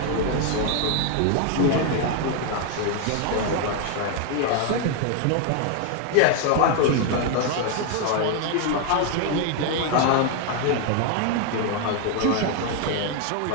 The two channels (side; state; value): both; different; correlation 0.00